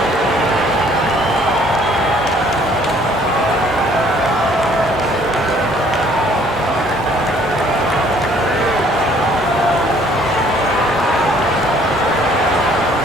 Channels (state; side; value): normal; both; correlation 0.60